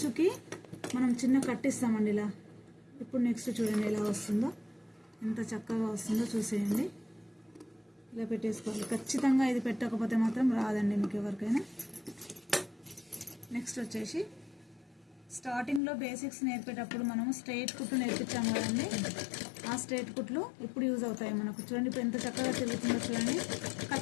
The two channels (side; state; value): right; drops out; at 15.8 s